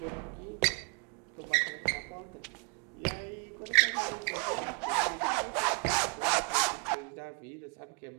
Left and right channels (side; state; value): left; quieter; 35.4 dB